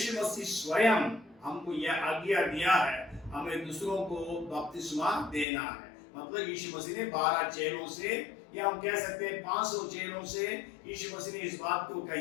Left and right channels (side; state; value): right; drops out; at 5.5 s